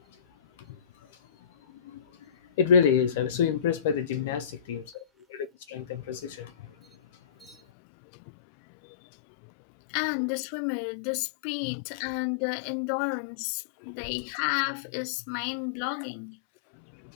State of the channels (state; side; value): drops out; right; at 7.6 s